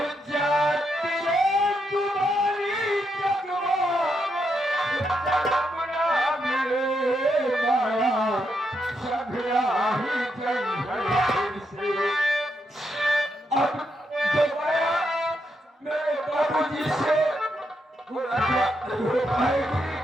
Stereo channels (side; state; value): both; normal; correlation 0.81